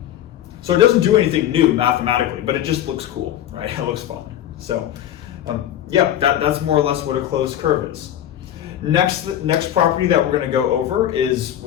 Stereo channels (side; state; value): right; quieter; 11.4 dB